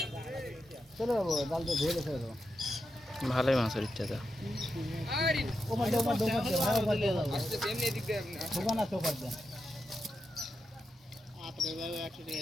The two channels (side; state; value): both; normal; correlation 0.87